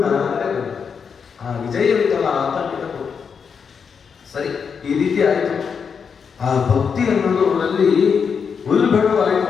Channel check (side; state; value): right; quieter; 6.3 dB